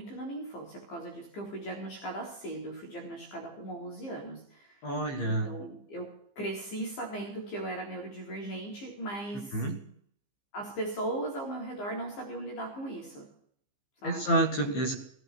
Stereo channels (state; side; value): late; right; 15 ms